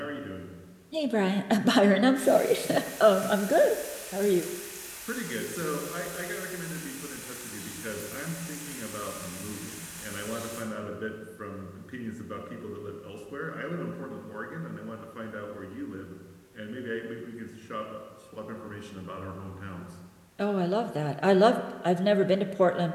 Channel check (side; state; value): both; identical; correlation 1.00